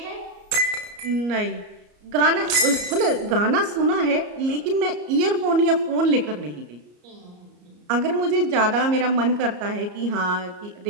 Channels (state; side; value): late; left; 34 ms